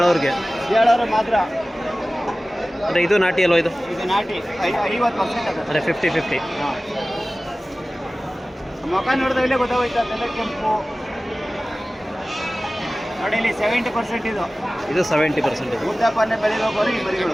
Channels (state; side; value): normal; both; correlation 0.97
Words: ಮಾತ್ರ. ಅಂದರೆ ಇದು ನಾಟಿ ಅಲ್ವ? ಇದು ನಾಟಿ 50% ಅಂದರೆ 50-50. ಹಾಂ ಮುಖ ನೋಡಿದ್ರೆ ಇಲ್ಲೇ ಗೊತ್ತಾಗೋಯ್ತು ಅದೆಲ್ಲ ಕೆಂಪು ನೋಡಿ ಇಲ್ಲಿ 70% ಇದು ಇದು 70% ಇದೆ. ಉದ್ದಪ್ಪನೆ ಬೆಳಿಬೇಕು ಈ